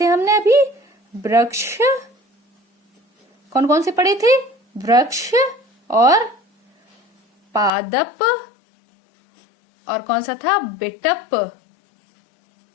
हमने अभी? वृक्ष। कौन कौन से पढ़े थे? वृक्ष, और पादप, और कौन सा था? बिटप।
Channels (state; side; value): drops out; right; at 7.7 s